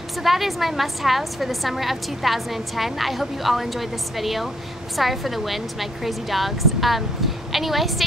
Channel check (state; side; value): normal; both; correlation 0.69